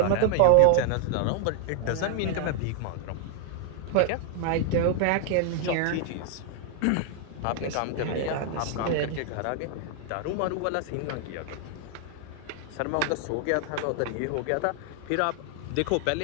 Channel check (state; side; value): different; both; correlation 0.00